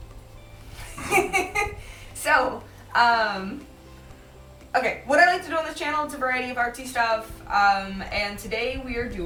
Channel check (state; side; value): identical; both; correlation 1.00